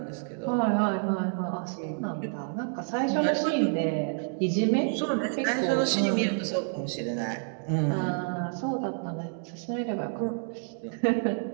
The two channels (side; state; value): left; silent; 57 dB below the other